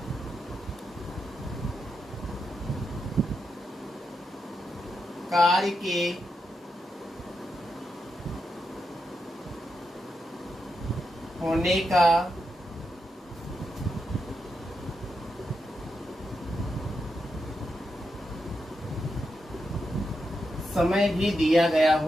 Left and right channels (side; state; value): both; normal; correlation 0.85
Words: कार्य के होने का समय भी दिया गया